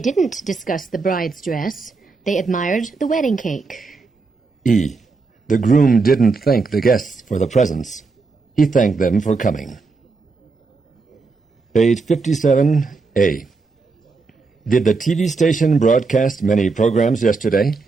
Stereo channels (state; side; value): quieter; left; 4.2 dB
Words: didn't discuss the bride's dress. They admired the wedding cake. E. The groom didn't thank the guests for the presents. He thanked them for coming. Page 57. A. Did the TV station broadcast many programs yesterday?